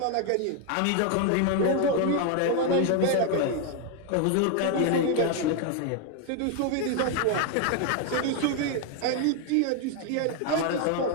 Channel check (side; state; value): both; different; correlation 0.00